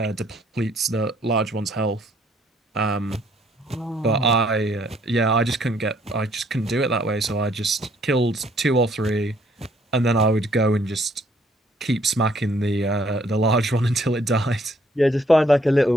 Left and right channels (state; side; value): normal; both; correlation 0.65